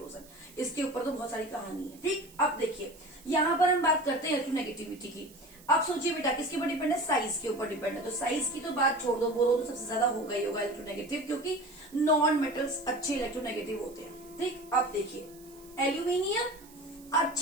इसके ऊपर तो बहुत सारी कहानी है, ठीक। अब देखिए यहाँ पर हम बात करते हैं इलेक्ट्रोनेगेटिविटी की। अब सोचिए बेटा किसके ऊपर डिपेंड है, साइज के ऊपर डिपेंड है। तो साइज की तो बात छोड़ दो, बोरोन तो सबसे ज्यादा होगा ही होगा इलेक्ट्रोनेगेटिव, क्योंकि नॉन मेटल्स अच्छे इलेक्ट्रोनेगेटिव होते हैं, ठीक। अब देखिए एल्यूमिनियम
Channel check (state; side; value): noise; right; hiss, 23 dB below the sound